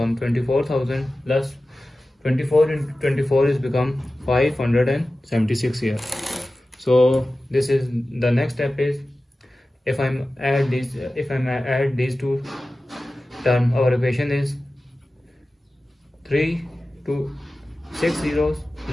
24,000 plus 24 into 24 is become 576 here. So this is the next step is if I add these two terms, our equation is 3 to 6 zeros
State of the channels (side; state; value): both; normal; correlation 0.95